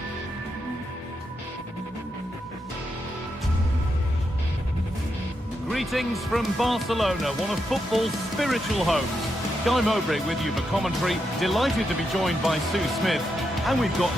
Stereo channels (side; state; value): both; normal; correlation 0.83